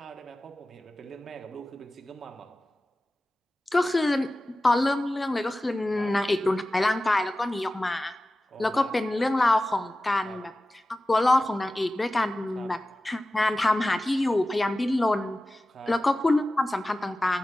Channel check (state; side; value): normal; both; correlation 0.95